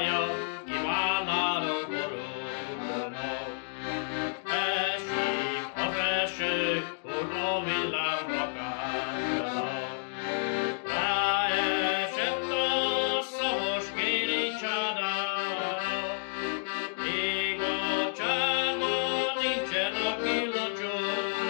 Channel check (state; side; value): silent; right; digital silence